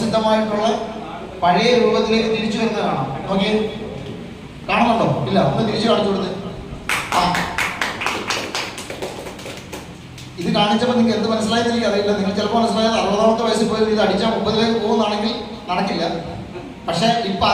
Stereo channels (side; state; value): both; identical; correlation 1.00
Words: പഴയ രൂപത്തിലേക്ക് തിരിച്ചു വരുന്നത് കാണാം. നോക്കിയേ, കാണുന്നുണ്ടോ? ഇല്ല, ഒന്ന് തിരിച്ചു കാണിച്ചു കൊടുത്ത്. ആ, ഇത് കാണിച്ചപ്പോൾ നിങ്ങൾക്ക് എന്ത് മനസ്സിലായെന്ന് എനിക്ക് അറിയില്ല. നിങ്ങൾ ചിലപ്പോൾ മനസ്സിലായത് 60ാമത്തെ വയസ്സിൽ പോയി ഇത് അടിച്ചാൽ 30ലേക്ക് പോകുന്നതാണെങ്കിൽ നടക്കില്ല. പക്ഷെ ഇപ്പൊ